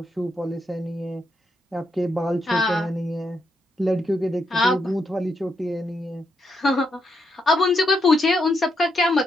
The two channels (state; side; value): normal; both; correlation 0.80